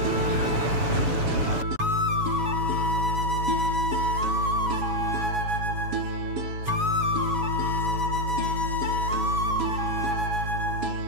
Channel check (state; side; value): late; left; 7.1 ms